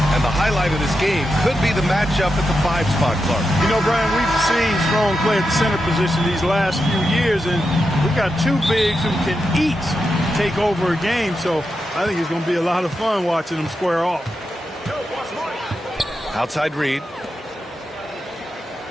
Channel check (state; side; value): normal; both; correlation 0.88